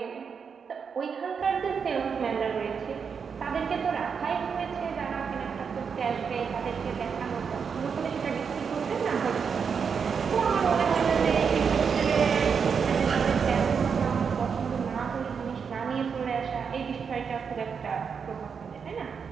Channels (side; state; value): left; quieter; 6.3 dB